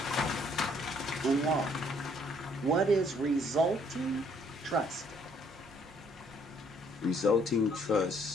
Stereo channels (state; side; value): normal; both; correlation 0.65